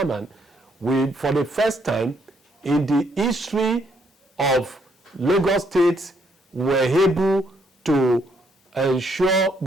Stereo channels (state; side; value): normal; both; correlation 0.72